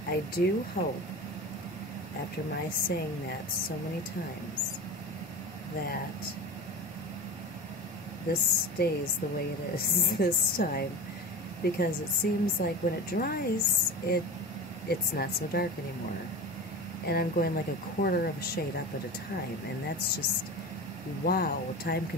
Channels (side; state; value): both; normal; correlation 0.30